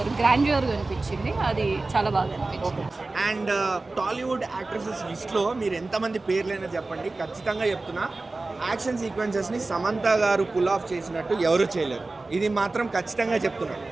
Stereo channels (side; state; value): left; quieter; 3.3 dB